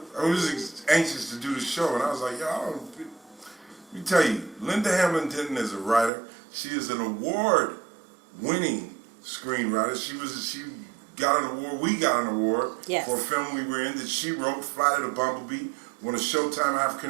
was anxious to do the show, and I was like, let me tell you, Linda Hamblin Denton is a writer. She is an award-winning screenwriter. She got an award. We got an award for a film we were in that she wrote, Flight of the Bumblebee, won a Showtime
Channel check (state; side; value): drops out; left; at 6.1 s